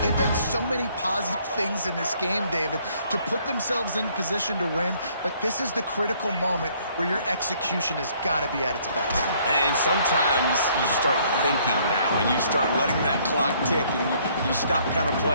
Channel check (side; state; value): both; inverted; correlation -0.63